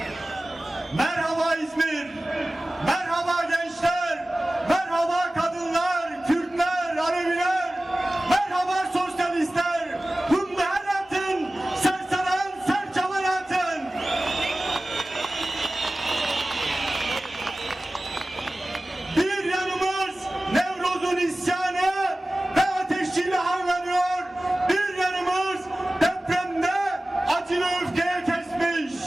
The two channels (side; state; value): both; normal; correlation 0.97